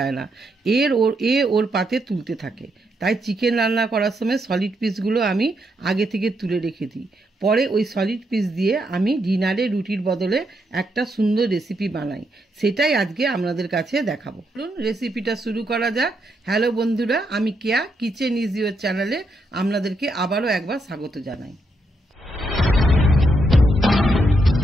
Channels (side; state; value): both; normal; correlation 0.79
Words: না, ওর পাতে তুলতে থাকে। তাই চিকেন রান্না করার সময় সলিড পিসগুলো আমি আগে থেকে তুলে রেখে দিই। পরে ওই সলিড পিস দিয়ে আমি ডিনারে রুটির বদলে একটা সুন্দর রেসিপি বানাই, সেটাই আজকে আপনাদের কাছে দেখাবো। চলুন রেসিপিটা শুরু করা যাক। হ্যালো বন্ধুরা, আমি কেয়া কিচেন ইজ ইওর চ্যানেলে আপনাদেরকে আবারও একবার স্বাগত জানাই।